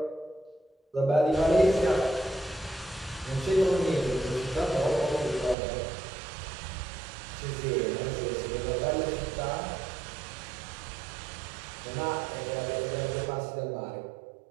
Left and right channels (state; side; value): drops out; left; at 5.6 s